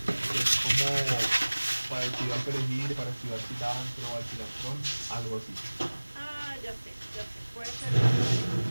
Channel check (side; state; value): both; inverted; correlation -1.00